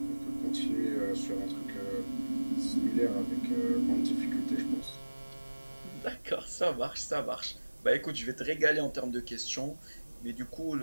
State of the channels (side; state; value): both; inverted; correlation -1.00